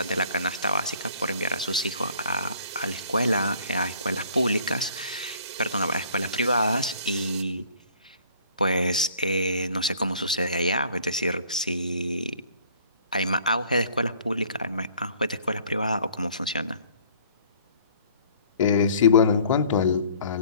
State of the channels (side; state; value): both; inverted; correlation -0.55